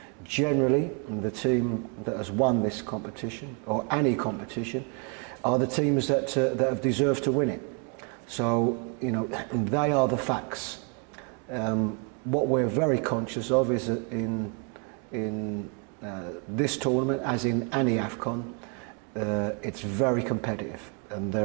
generally the team that has won this competition, or any competition, are the teams that have deserved to win it. So, you know, they are the facts. What we're very conscious of is that in this tournament, as in any AFCON, it's very competitive, and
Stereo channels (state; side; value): quieter; left; 36.5 dB